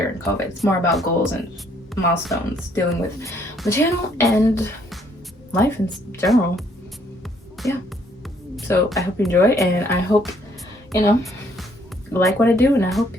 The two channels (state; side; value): normal; both; correlation 0.66